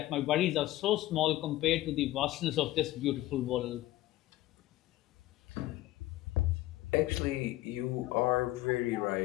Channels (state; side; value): quieter; right; 16.1 dB